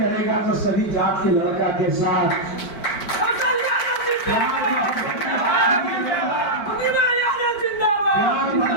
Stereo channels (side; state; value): right; late; 4.5 ms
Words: तो सभी जात के लड़का के साथ।